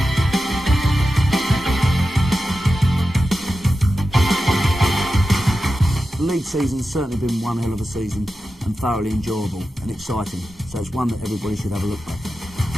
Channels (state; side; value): normal; both; correlation 0.92